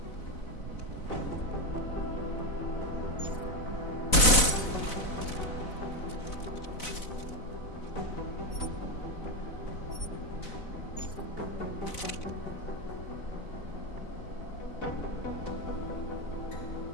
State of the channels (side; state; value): right; late; 4.0 ms